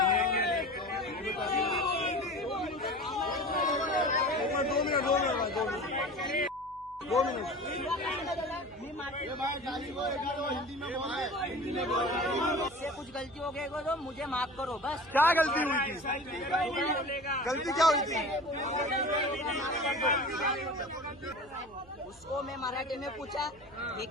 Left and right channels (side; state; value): right; noise; hum, 25 dB below the sound